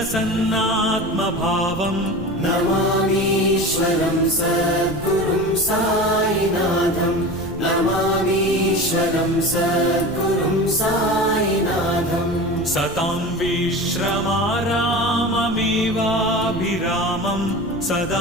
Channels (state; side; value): noise; right; rumble, 14 dB below the sound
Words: नमामीश्वरं सद्गुरुं साईनाथम् नमामीश्वरं सद्गुरुं साईनाथम् सतां विश्रमाराममेवाभिरामं